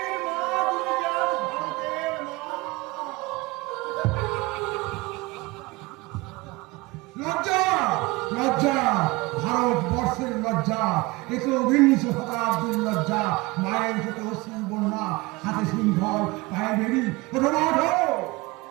মা, তুমি যা ভারতের মা। লজ্জা লজ্জা, ভারতবর্ষের লজ্জা, একবিংশ শতাব্দীর লজ্জা। মায়ের চোখে অশ্রুর বন্যা, হাতে সিংহল, পায়ে বেরি,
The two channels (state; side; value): quieter; left; 22.9 dB